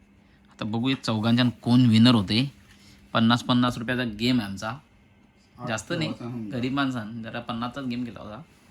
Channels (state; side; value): identical; both; correlation 1.00